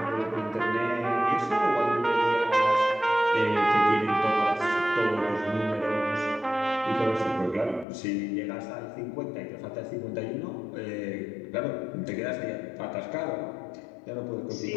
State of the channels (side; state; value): right; drops out; at 7.9 s